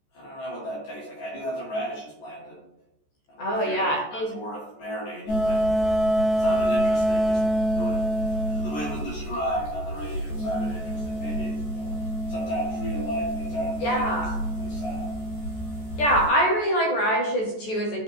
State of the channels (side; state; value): right; late; 14 ms